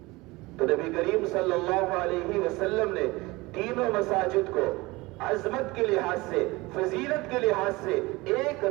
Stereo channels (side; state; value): left; quieter; 22.0 dB